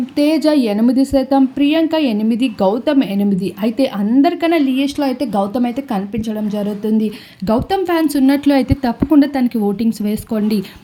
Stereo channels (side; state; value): both; identical; correlation 1.00